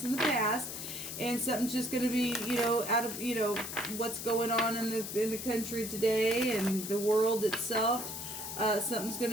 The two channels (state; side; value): noise; left; hiss, 7 dB below the sound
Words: in the past, and something's just going to be, out of, what's going on in the country today and the world itself. Something's going